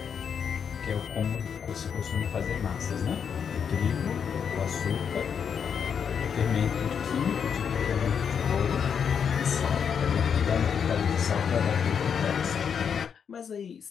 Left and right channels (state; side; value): quieter; right; 7.2 dB